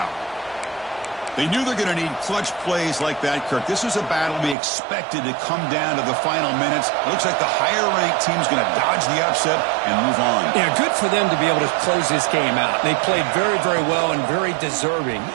They knew they're going to need clutch plays like that, Kirk. This was a battle we expected to come down to the final minutes. It looks like the higher-ranked team's going to dodge the upset and move on. Yeah, good for them to be able to close this game out. They played very, very well and very deserving.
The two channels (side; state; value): left; drops out; at 4.5 s